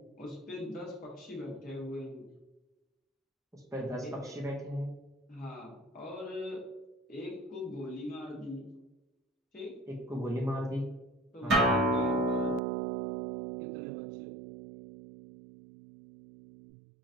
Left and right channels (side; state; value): left; drops out; at 12.6 s